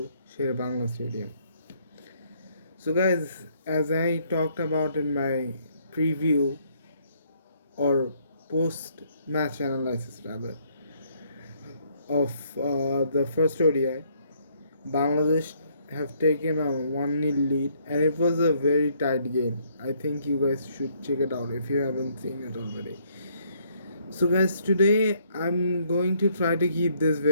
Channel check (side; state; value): both; inverted; correlation -0.68